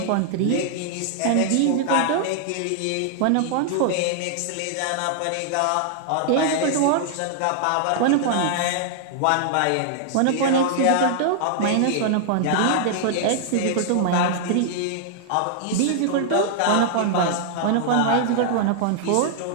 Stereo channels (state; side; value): different; both; correlation -0.01